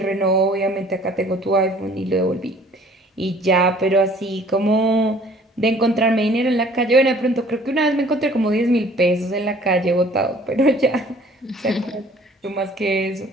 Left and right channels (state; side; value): normal; both; correlation 0.53